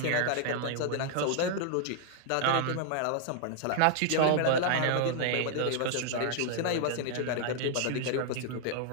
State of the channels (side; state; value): both; different; correlation -0.01